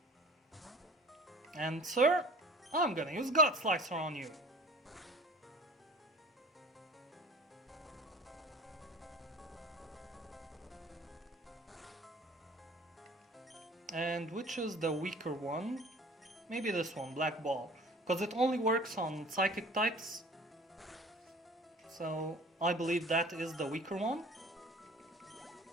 And sir, I'm gonna use God Slicer on you. And which is the weaker one? Maybe this one, Black Ball. Because it only works on psychic types. So I believe that is the weaker one.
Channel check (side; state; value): both; normal; correlation 0.45